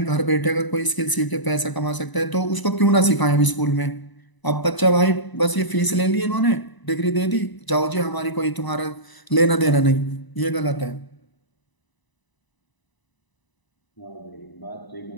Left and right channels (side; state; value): right; late; 1.0 ms